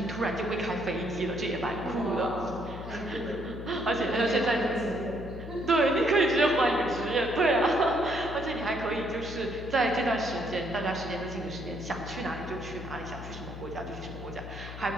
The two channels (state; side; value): noise; left; hum, 11 dB below the sound